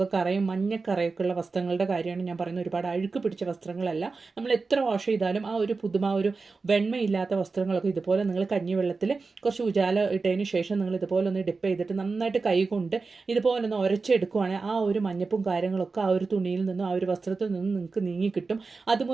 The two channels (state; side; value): quieter; left; 4.2 dB